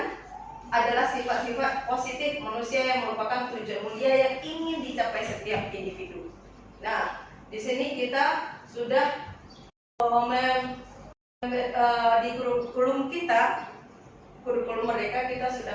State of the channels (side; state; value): both; identical; correlation 1.00